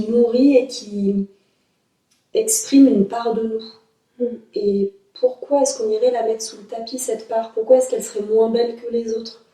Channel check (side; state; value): both; identical; correlation 1.00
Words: nourrit et qui exprime une part de nous. Et pourquoi est-ce qu'on irait la mettre sous le tapis, cette part? Pourquoi est-ce qu'elle serait moins belle que les autres?